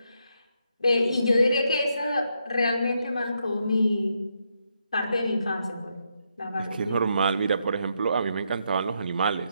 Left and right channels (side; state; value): both; inverted; correlation -0.79